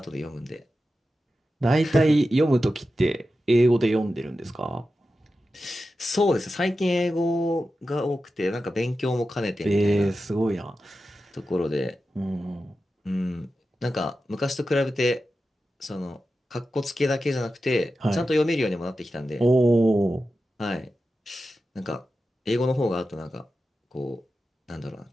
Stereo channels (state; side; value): normal; both; correlation 0.92